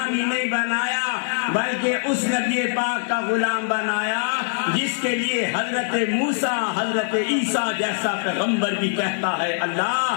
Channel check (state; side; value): silent; right; digital silence